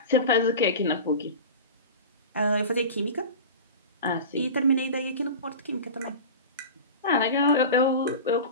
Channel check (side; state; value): both; inverted; correlation -0.31